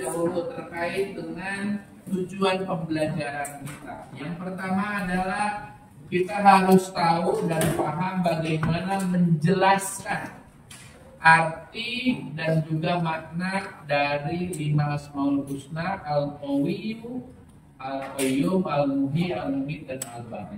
terkait dengan tujuan pembelajaran kita. Yang pertama adalah kita harus tahu dan paham bagaimana menjelaskan arti dan juga makna dari 5 Asmaul Husna, Al-Qawiyyu, Al-Qayyum, Al-Muhyi, Al-Mumit, dan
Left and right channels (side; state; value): both; identical; correlation 1.00